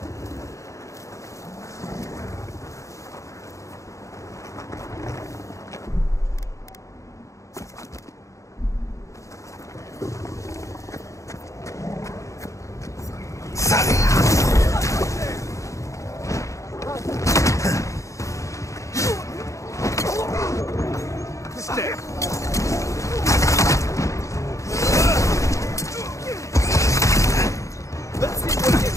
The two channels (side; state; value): right; late; 0.15 ms